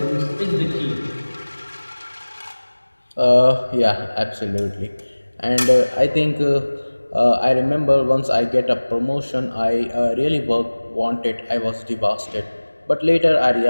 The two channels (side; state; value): both; inverted; correlation -1.00